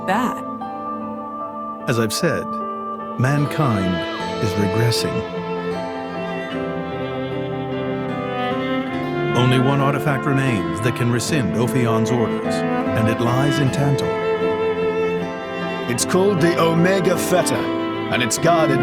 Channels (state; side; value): identical; both; correlation 1.00